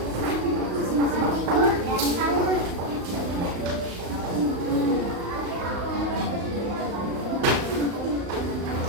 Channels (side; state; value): left; late; 35 ms